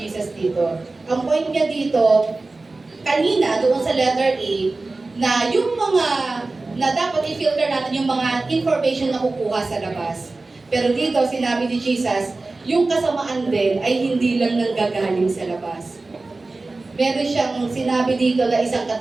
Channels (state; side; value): quieter; left; 3.4 dB